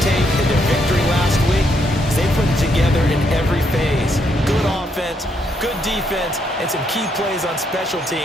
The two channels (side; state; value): both; normal; correlation 0.75